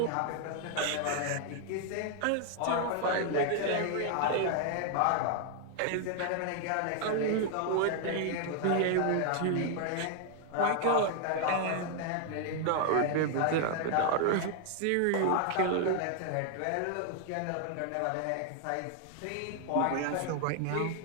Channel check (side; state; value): both; different; correlation 0.00